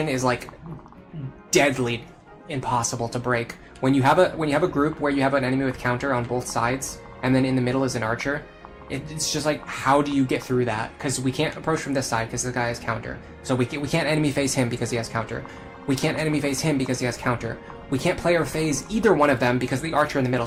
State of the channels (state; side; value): identical; both; correlation 1.00